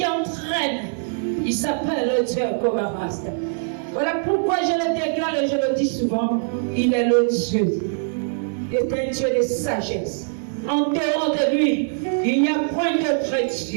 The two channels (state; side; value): silent; left; 64 dB below the other